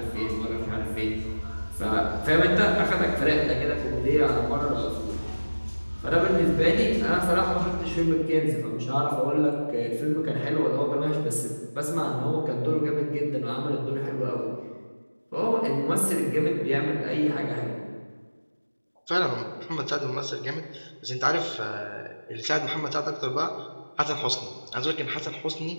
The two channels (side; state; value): both; inverted; correlation -1.00